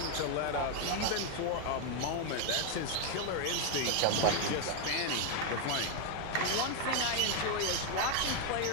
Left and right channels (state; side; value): different; both; correlation 0.01